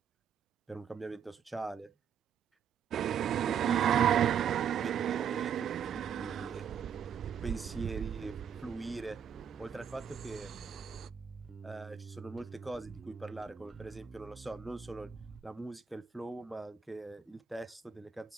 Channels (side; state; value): left; quieter; 7.9 dB